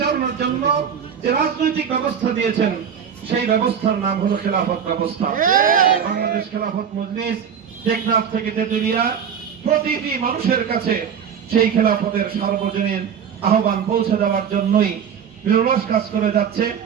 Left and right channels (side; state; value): left; quieter; 7.7 dB